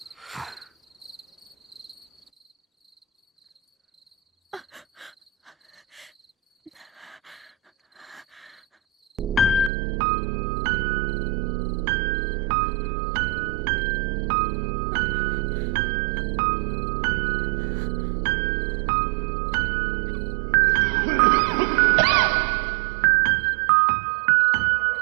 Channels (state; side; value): drops out; left; at 9.7 s